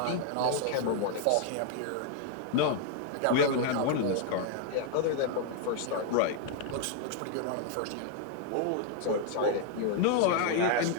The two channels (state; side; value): different; both; correlation 0.00